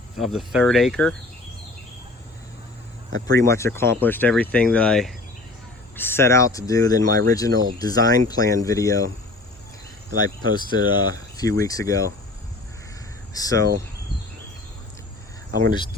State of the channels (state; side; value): quieter; right; 3.0 dB